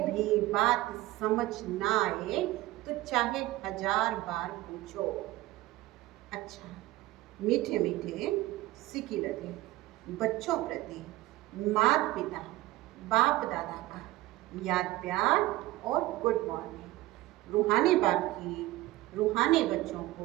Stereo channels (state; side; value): quieter; left; 17.4 dB